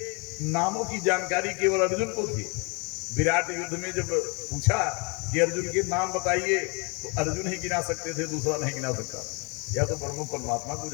नामों की जानकारी केवल अर्जुन को थी। विराट युद्ध में जब पूछा कि अर्जुन के नाम बताइए, तो अर्जुन ही गिना सकते थे, दूसरा नहीं गिना सकता। या तो ब्रह्म परमात्मा को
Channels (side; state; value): right; quieter; 31.8 dB